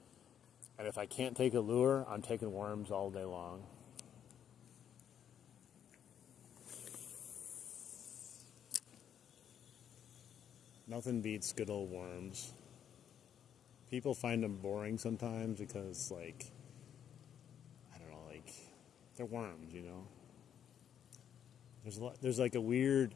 And if I can't take a lure, I'm taking worms all day long. Nothing beats good old worms. People find them boring sometimes because, like, I don't know, like, they're worms, you know? There's like a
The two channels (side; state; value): right; quieter; 9.1 dB